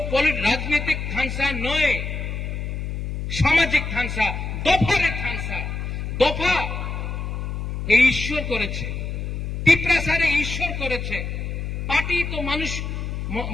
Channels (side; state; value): left; noise; hum, 4 dB below the sound